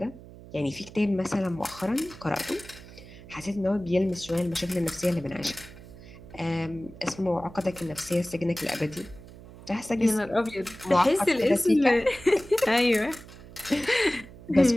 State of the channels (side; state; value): right; noise; hum, 18 dB below the sound